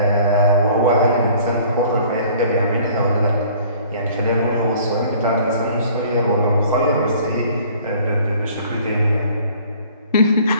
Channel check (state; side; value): inverted; both; correlation -0.53